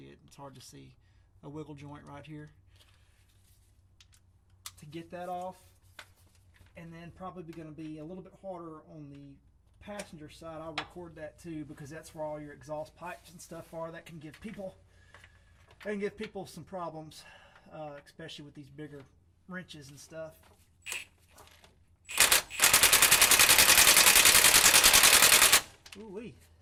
it, it's hard to see, a wiggle joint right here to get that off. And then probably going to be a little bit harder on the passenger side. I'll record that too, because that's where all your exhaust pipes and stuff are. That can give people some problems, especially with these bigger wrenches and stuff. Ooh-wee.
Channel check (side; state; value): both; identical; correlation 1.00